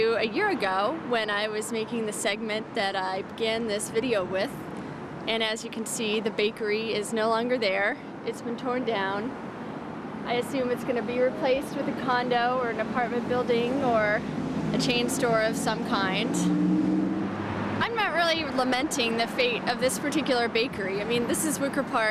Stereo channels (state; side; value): identical; both; correlation 1.00